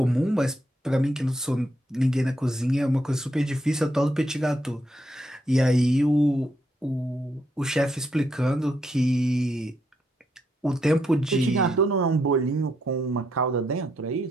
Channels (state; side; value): normal; both; correlation 0.78